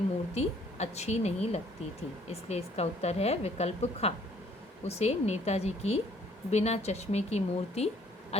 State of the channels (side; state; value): both; normal; correlation 0.62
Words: मूर्ति अच्छी नहीं लगती थी। इसलिए इसका उत्तर है विकल्प ख। उसे नेताजी की बिना चश्मे की मूर्ति